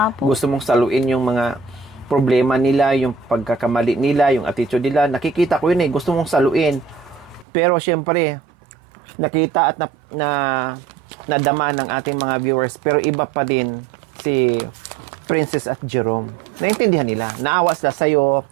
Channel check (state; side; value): drops out; left; at 7.5 s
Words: nga po. gusto mong saluin yung mga problema nila, yung pagkakamali nila, yung attitude nila. Nakikita ko yun gusto mong saluin. Pero syempre, nakita at nadama ng ating mga viewers. Pero iba pa din si Princess at Jerome. Naintindihan nila. Naawa sila sa'yo.